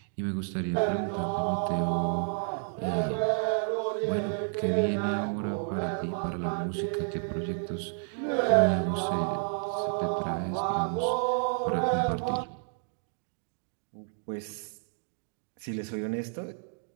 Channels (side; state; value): left; silent; 57 dB below the other